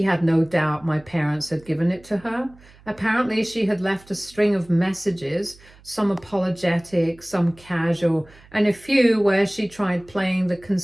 had no doubt my parents had given it to her. Apparently, she had left a string of messages, some apologetic, some casual, and a few where she tried playing the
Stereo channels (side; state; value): right; noise; hum, 25 dB below the sound